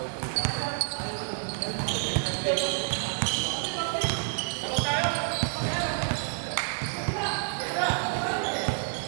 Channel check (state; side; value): silent; left; 58 dB below the other